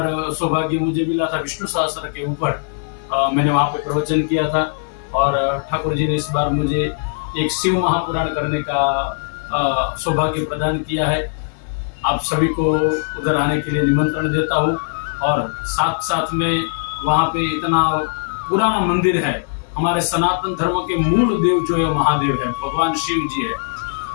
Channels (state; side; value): silent; right; 56 dB below the other